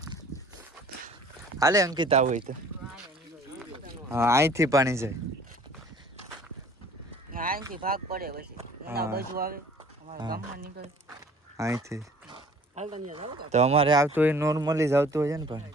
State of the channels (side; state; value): both; normal; correlation 0.51